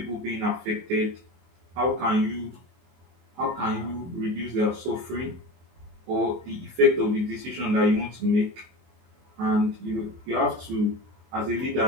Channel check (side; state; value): left; late; 24 ms